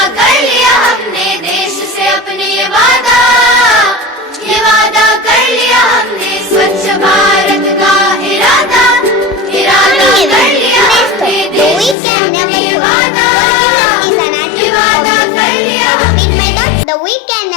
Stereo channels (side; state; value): right; drops out; at 12.0 s